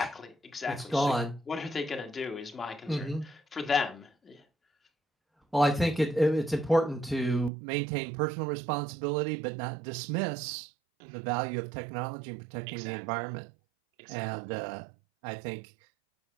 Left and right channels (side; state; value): left; drops out; at 7.5 s